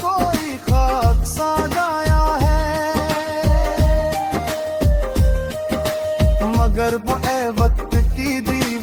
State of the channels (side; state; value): both; identical; correlation 1.00